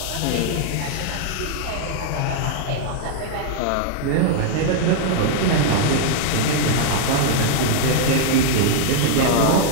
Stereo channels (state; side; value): different; both; correlation -0.01